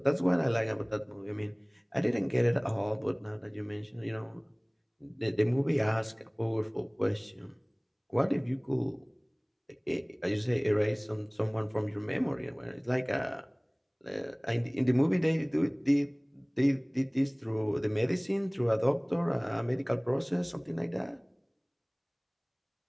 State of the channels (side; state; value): both; identical; correlation 1.00